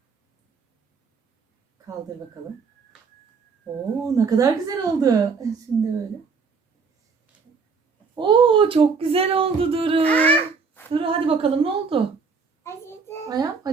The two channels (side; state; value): left; quieter; 5.1 dB